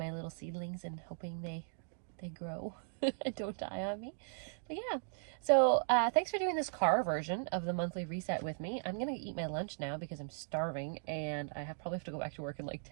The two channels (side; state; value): left; silent; digital silence